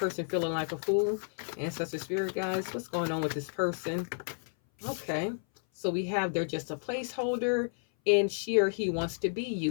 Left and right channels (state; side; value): silent; right; 57 dB below the other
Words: feeling like a fool? Ancestor spirit guys, what's going on with this person? Okay. So we have, they're just a placeholder and she or he wants to be